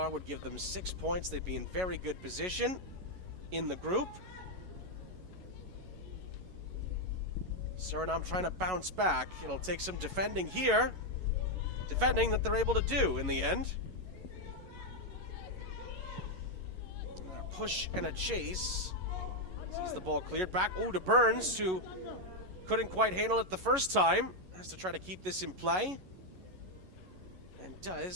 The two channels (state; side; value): late; left; 11 ms